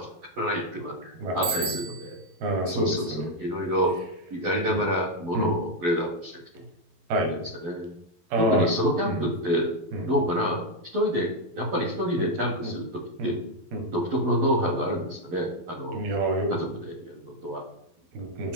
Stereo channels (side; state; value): left; late; 11 ms